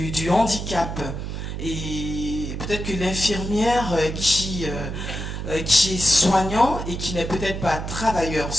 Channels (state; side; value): noise; right; hum, 5 dB below the sound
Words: handicap. Et peut-être que l'infirmière qui est soignant et qui n'est peut-être pas travailleur